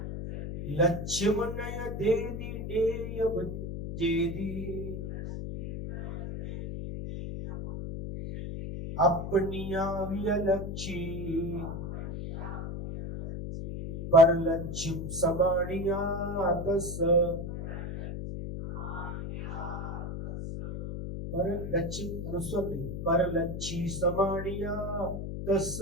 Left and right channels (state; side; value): noise; left; hum, 6 dB below the sound